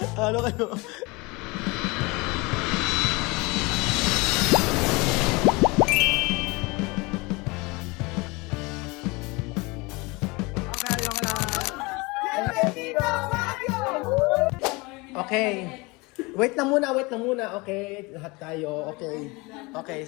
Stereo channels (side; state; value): right; quieter; 25.4 dB